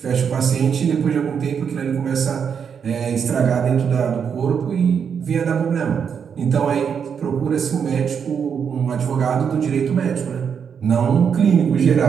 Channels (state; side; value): quieter; left; 7.1 dB